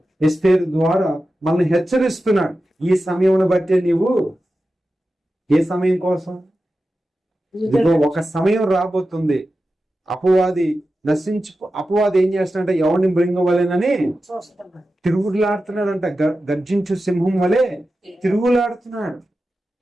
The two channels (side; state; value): both; normal; correlation 0.93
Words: ఎస్తేరు ద్వారా మనల్ని హెచ్చరిస్తున్నాడు. ఈ సమయం బట్టే నీవు ఏ సమయం కోసం? ఇదిగో ఒక సమయం రాబోతుంది, అపవాది అపవాది ఏం చేస్తున్నాడంటే ఎవరిని మృంగవలేనని తిరుగులాడుతున్నాడంట. గర్జించు సింహం వలె తిరుగులాడుతున్నాడు.